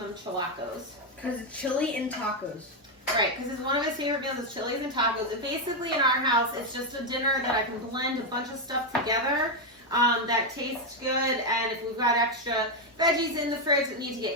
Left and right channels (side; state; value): both; normal; correlation 0.03